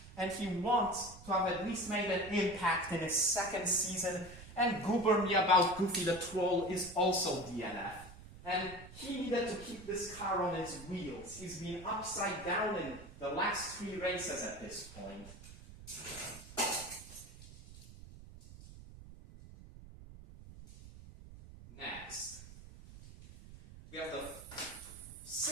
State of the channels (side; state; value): right; noise; rumble, 16 dB below the sound